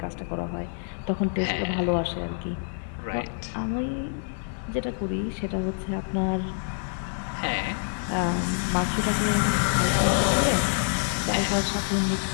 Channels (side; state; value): right; silent; 60 dB below the other